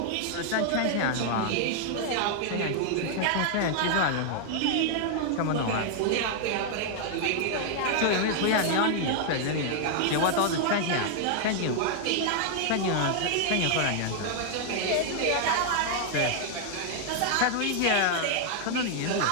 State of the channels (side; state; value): both; different; correlation 0.00